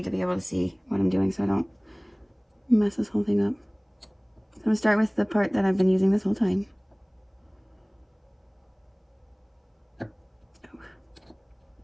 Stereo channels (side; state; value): both; identical; correlation 1.00